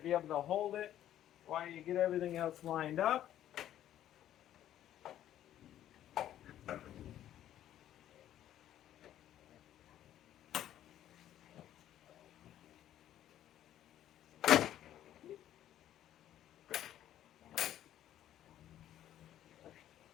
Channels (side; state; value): right; quieter; 11.9 dB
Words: able to hold it while you get everything else lined up.